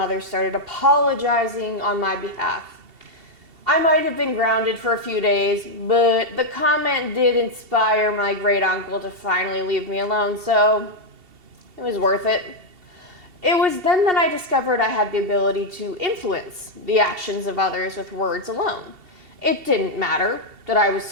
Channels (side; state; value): left; late; 2.7 ms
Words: started apologizing on my behalf. I might have been grounded for a few days, but the comment did inspire my great-uncle to finally leave me alone, so it was worth it. It was then that I discovered I had the ability to influence the actions of others with words alone. It didn't matter that I was